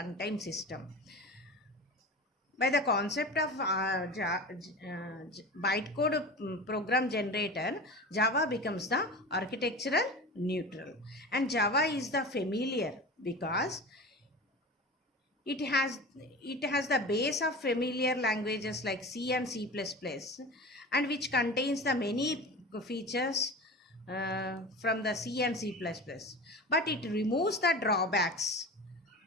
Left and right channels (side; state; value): both; normal; correlation 0.32